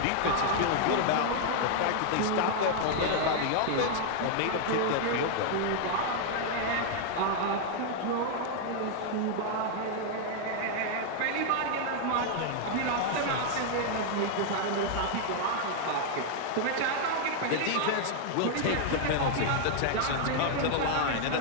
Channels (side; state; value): both; different; correlation 0.00